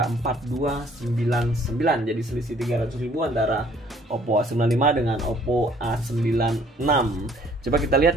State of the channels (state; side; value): normal; both; correlation 0.59